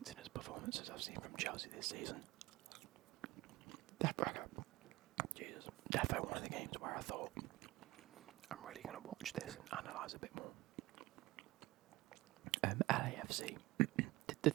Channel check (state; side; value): quieter; left; 18.8 dB